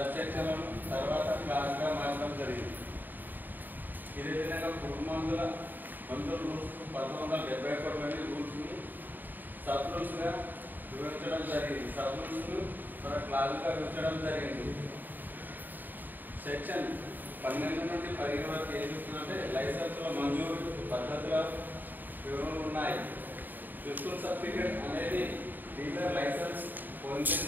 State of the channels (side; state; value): left; late; 0.089 ms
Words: సెక్షన్లను తర్వాత క్లాస్గా మార్చడం జరిగింది. ఇదే విధంగా పురుగుమందుల రూల్స్ 1971లోని రూల్స్ని సబ్ రూల్స్గా విభజించడం జరిగింది. సబ్ రూల్స్ను క్లాస్గా విభజించడం జరిగింది. సెక్షన్ 12 నుండి 15 వరకు ఏం చెప్తుందంటే లైసెన్సుల మంజూరు పద్ధతుల వివరణలు ఉన్నాయి. ప్రిన్సిపల్ సర్టిఫికేట్ అనేది డీలర్ లైసెన్స్